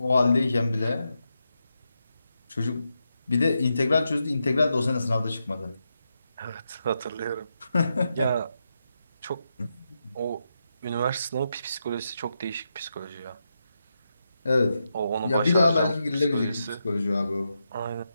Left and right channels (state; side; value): inverted; both; correlation -0.86